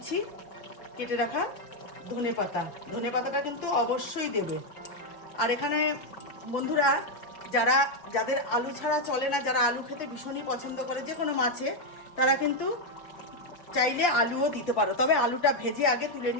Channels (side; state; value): right; late; 5.2 ms